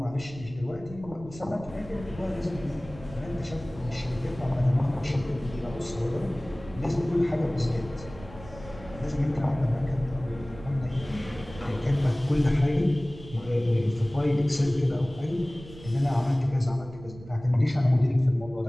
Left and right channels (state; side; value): noise; right; rumble, 16 dB below the sound